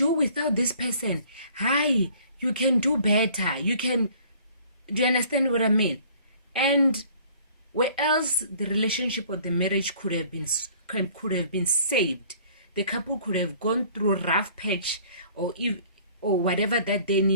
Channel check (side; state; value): both; inverted; correlation -0.54